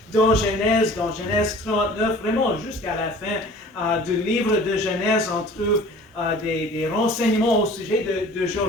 dans Genèse 39, vraiment jusqu'à la fin du livre de Genèse, on trouve des renseignements au sujet de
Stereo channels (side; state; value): both; normal; correlation 0.46